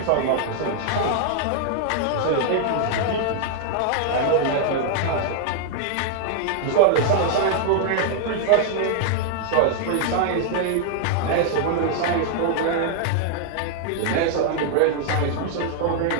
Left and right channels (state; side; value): different; both; correlation 0.00